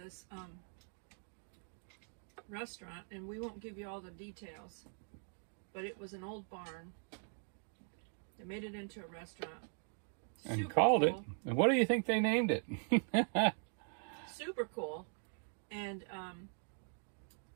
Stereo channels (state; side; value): silent; left; 51 dB below the other